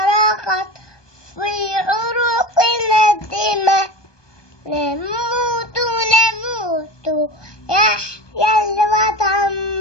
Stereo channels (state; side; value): late; right; 1.2 ms